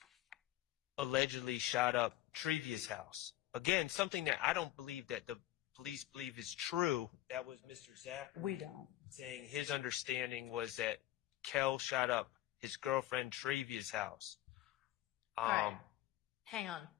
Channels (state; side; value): quieter; right; 14.9 dB